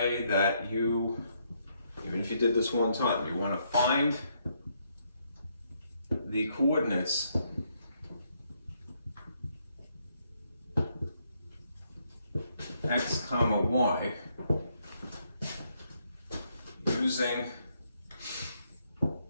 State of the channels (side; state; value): both; inverted; correlation -0.74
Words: that you, even if you did this one time, you want to find the coordinates x comma y using